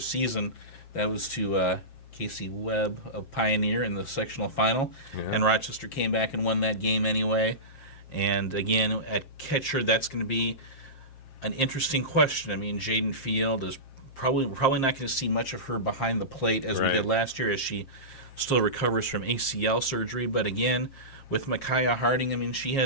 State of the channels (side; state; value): right; late; 7.5 ms